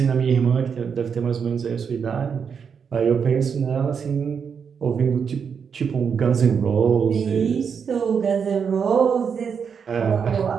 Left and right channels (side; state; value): left; quieter; 6.6 dB